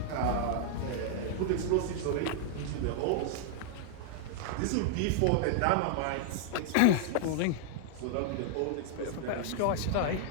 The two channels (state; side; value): different; both; correlation -0.01